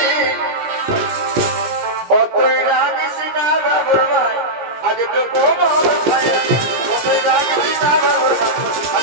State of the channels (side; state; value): left; late; 17 ms